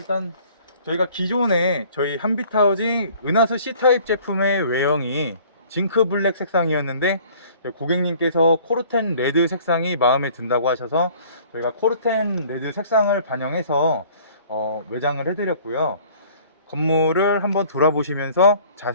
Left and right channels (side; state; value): both; inverted; correlation -0.52